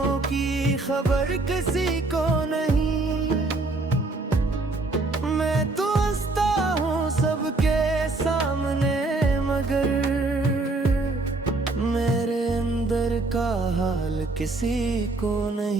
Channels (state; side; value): quieter; left; 3.2 dB